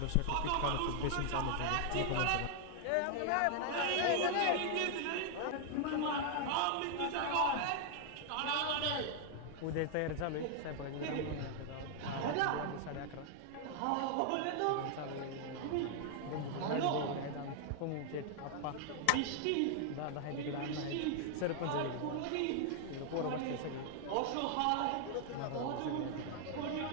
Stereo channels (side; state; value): both; different; correlation 0.00